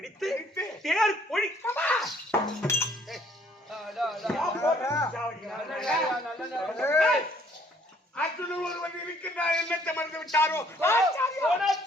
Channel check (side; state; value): both; normal; correlation 0.62